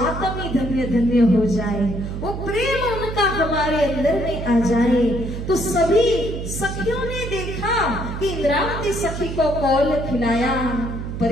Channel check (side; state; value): right; noise; hum, 6 dB below the sound